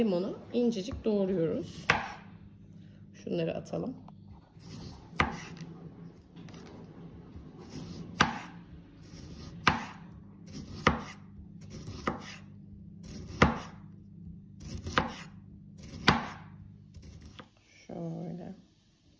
incecik doğruyoruz. Şunları atalım. Şöyle.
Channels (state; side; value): identical; both; correlation 1.00